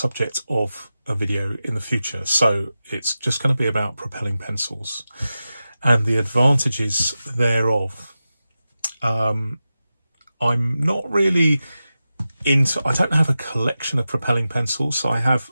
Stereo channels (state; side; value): inverted; both; correlation -0.93